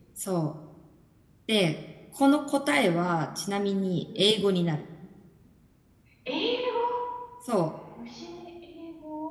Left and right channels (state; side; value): identical; both; correlation 1.00